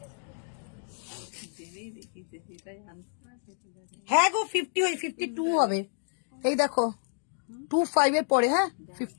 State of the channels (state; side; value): silent; right; digital silence